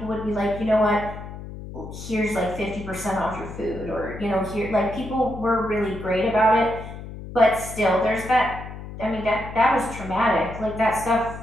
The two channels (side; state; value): left; noise; hum, 11 dB below the sound